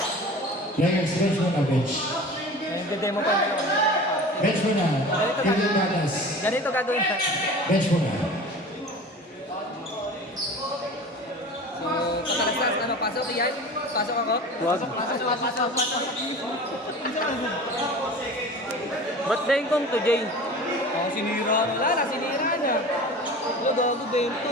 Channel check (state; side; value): normal; both; correlation 0.37